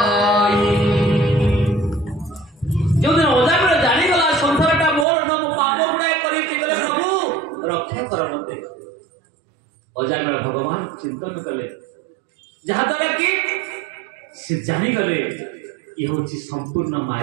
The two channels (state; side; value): drops out; left; at 5.1 s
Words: ଯୋଉଦିନ ଅଜାମିଳ ଜାଣିଗଲା ସଂସାରଟା ମୋର ନା ମୁଁ ପାପ ଗୁଡ଼ାଏ କରିଛି ଗଲେ ପ୍ରଭୁ ରକ୍ଷା କର ମତେ ଅଜାମିଳ ଭଗବାନ ଚିନ୍ତନ କଲେ ଯାହାଦ୍ୱାରା କି ସେ ଜାଣିଗଲେ ଇଏ ହଉଛି ସମ୍ପୂର୍ଣ୍ଣ